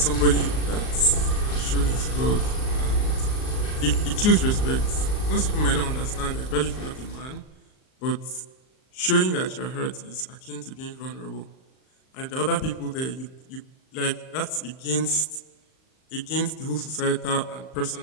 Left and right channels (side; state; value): right; late; 38 ms